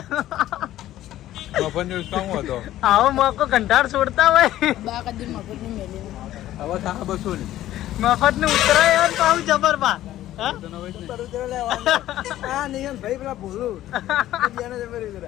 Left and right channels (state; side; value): quieter; right; 13.8 dB